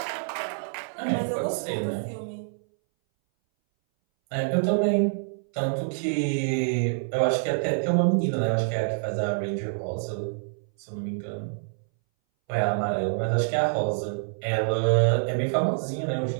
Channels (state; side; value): silent; left; 60 dB below the other